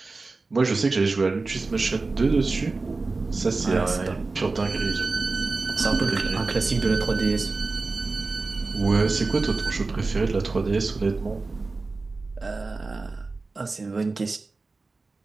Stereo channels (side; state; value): left; quieter; 3.7 dB